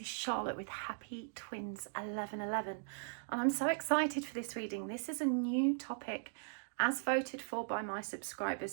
Charlotte with Happy Twins 1111 and I'm so excited for this reading. This is a new topic as voted for by my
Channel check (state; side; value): silent; left; digital silence